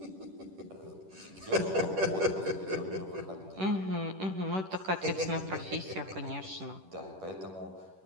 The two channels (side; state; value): left; late; 10 ms